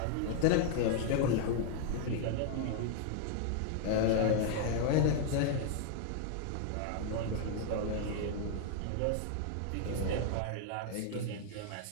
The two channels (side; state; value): both; different; correlation 0.00